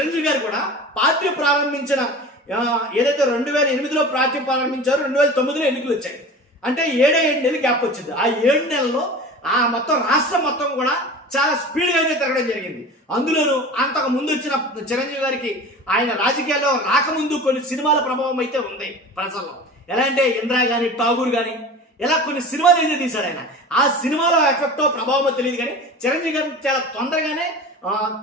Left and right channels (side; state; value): both; normal; correlation 0.36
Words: గారు కూడా పార్టీ ప్రారంభించిన ఏదైతే 2008లో పార్టీ ప్రారంభించారో 2009లో ఎన్నికలు వచ్చాయి. అంటే 7 నెలలు గ్యాప్ వచ్చింది. ఆ 7 నెలల్లో ఆ మొత్తం రాష్ట్రం మొత్తం కూడా చాలా స్పీడ్గా అయితే తిరగడం జరిగింది. అందులోనూ అంతకు ముందు వచ్చిన చిరంజీవి గారికి ఆయన రాజకీయాల్లో రాకముందు కొన్ని సినిమాల ప్రభావం అయితే ఉంది ప్రజల్లో. ఎలా అంటే ఇంద్రా కానీ ఠాగూర్ కానీ ఇలా కొన్ని సినిమాలు అయితే తీశాడు ఆయన. ఆ సినిమాలో ఎఫెక్టో ప్రభావమో తెలియదు కానీ చిరంజీవి గారిని చాలా తొందరగానే